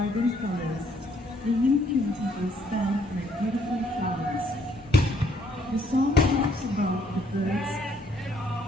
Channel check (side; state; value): both; normal; correlation 0.66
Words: colors, the Yim Kyung people stand like beautiful flowers. The song talks about the birds,